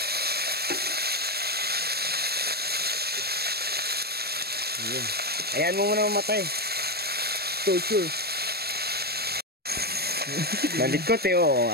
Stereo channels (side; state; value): left; late; 0.46 ms